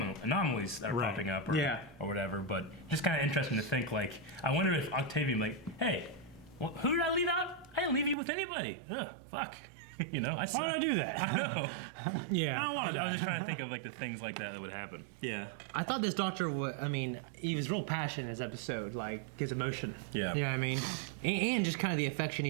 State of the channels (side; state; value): left; drops out; at 8.2 s